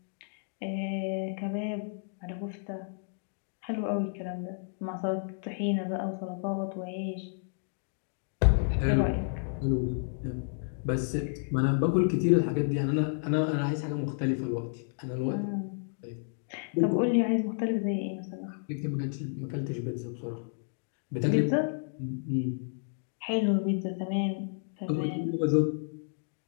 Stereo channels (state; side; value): silent; right; digital silence